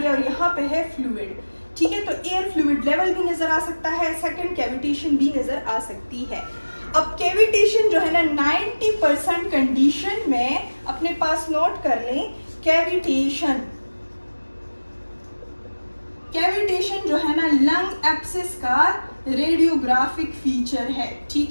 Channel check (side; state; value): both; inverted; correlation -1.00